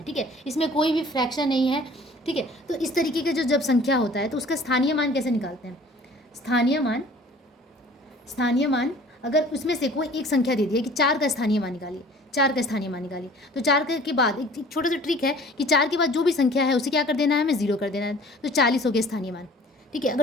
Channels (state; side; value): normal; both; correlation 0.49